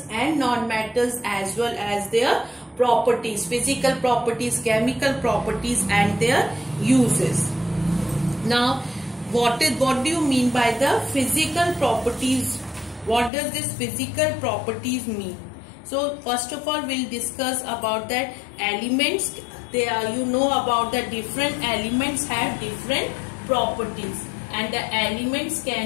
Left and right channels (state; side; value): drops out; right; at 13.3 s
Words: and non-metals as well as their properties, physical properties, chemical properties and their uses. Now what do you mean by the physical properties? What does this physical properties mean? So first of all we'll discuss about that elements. They are, you know about the different elements have different properties, and the elements